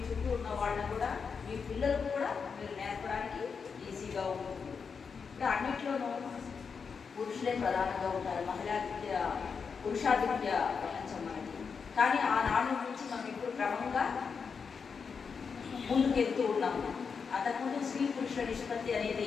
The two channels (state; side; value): quieter; right; 5.8 dB